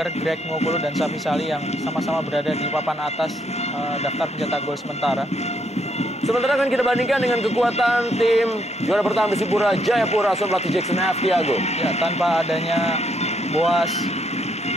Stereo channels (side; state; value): both; normal; correlation 0.73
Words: Greg Ngokolo dan Safi Sali yang sama-sama berada di papan atas daftar pencetak gol sementara. Sementara akan kita bandingkan dengan kekuatan tim juara bertahan Persipura Jayapura asuhan pelatih Jackson F. Tiago. Ya, tanpa adanya Boas,